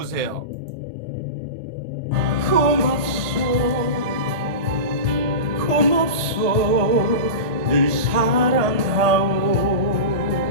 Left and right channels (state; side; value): late; left; 1.6 ms